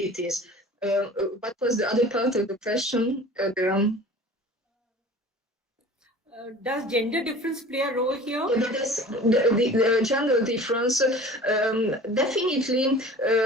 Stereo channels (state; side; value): normal; both; correlation 0.42